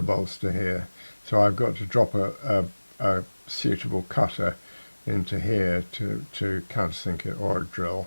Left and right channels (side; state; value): both; inverted; correlation -1.00